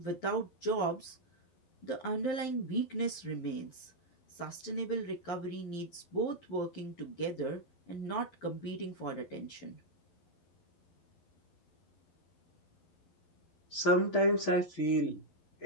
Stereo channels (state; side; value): late; right; 12 ms